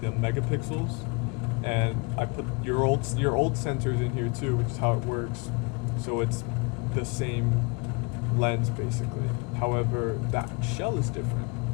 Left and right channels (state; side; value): quieter; right; 29.7 dB